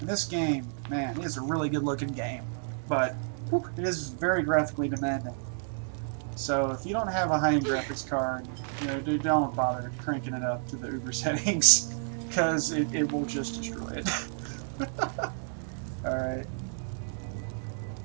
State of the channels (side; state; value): left; silent; digital silence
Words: this game, man, it is a really good looking game. But whew, it is very graphically demanding. So if you don't have a high-end graphics card, you know, don't bother cranking it up to the Uber settings, because it will just destroy it. Alright.